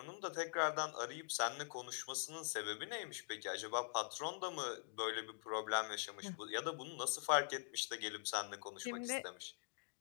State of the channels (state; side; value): silent; right; digital silence